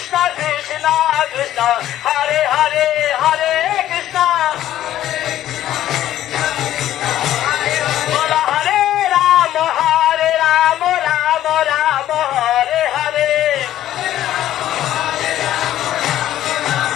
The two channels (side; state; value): right; quieter; 12.7 dB